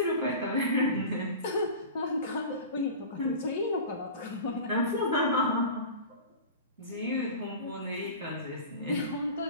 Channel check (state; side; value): inverted; both; correlation -0.34